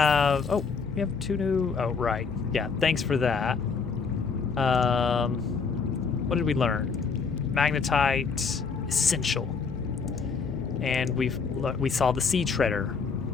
Oh, we have 2 new. Oh, right. Yeah. Thanks for that. What did we learn? Magnetite essential, and we saw the sea treader.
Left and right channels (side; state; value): right; quieter; 5.3 dB